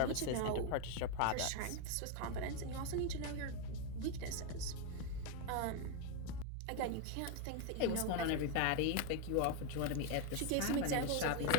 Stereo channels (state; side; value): different; both; correlation 0.01